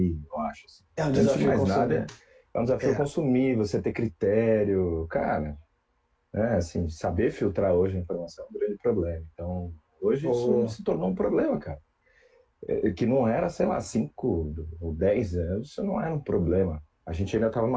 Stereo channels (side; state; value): both; identical; correlation 1.00